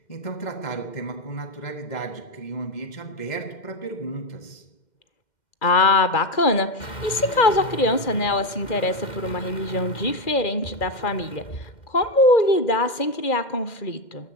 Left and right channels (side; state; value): right; late; 2.1 ms